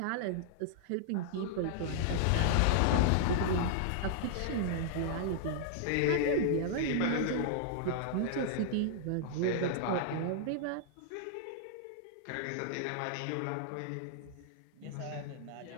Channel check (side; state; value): both; different; correlation -0.01